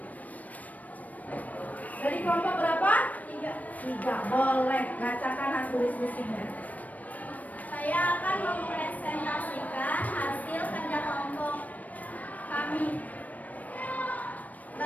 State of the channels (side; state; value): right; late; 0.074 ms